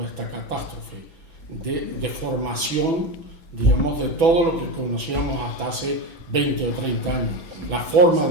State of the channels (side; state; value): left; late; 6.0 ms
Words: esta catástrofe de formación, digamos, de todo lo que conocíamos hasta hace 20 o 30 años, la forma